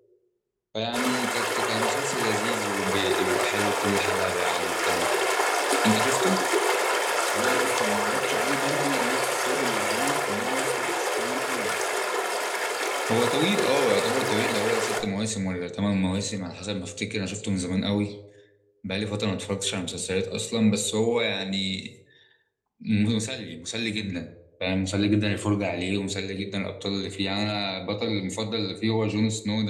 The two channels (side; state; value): both; identical; correlation 1.00